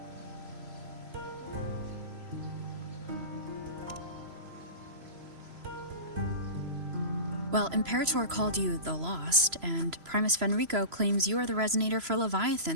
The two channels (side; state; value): left; late; 3.0 ms